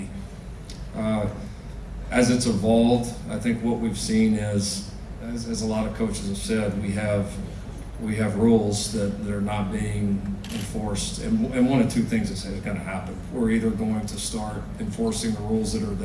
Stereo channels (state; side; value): identical; both; correlation 1.00